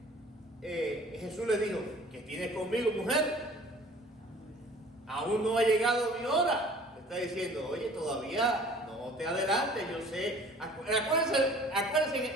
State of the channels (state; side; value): normal; both; correlation 0.49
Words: Jesús le dijo, ¿qué tienes conmigo, mujer? Aún no ha llegado mi hora. Le está diciendo, oye, todavía no te adelantes, yo sé.